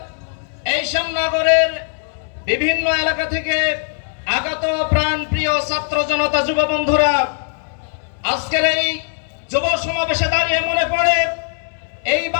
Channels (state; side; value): silent; right; digital silence